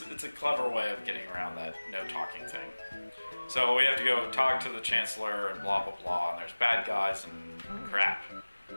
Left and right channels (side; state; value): both; inverted; correlation -1.00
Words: a clever way of getting around that no talking thing. So we have to go talk to the Chancellor and blah blah blah, and there's bad guys and crap.